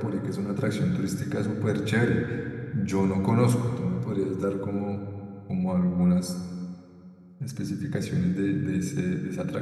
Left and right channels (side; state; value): both; identical; correlation 1.00